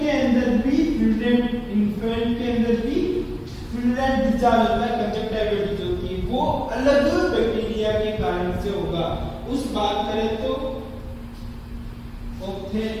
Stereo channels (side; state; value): both; identical; correlation 1.00